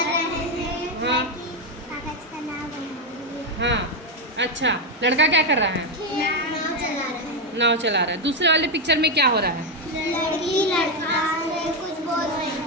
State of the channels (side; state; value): both; normal; correlation 0.07